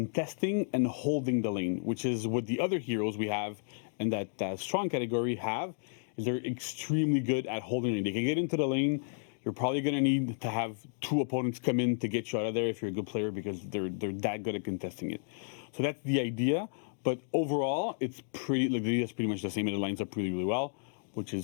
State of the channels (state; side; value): silent; right; digital silence